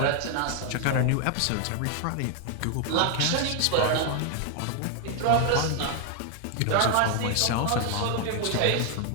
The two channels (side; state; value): both; different; correlation 0.00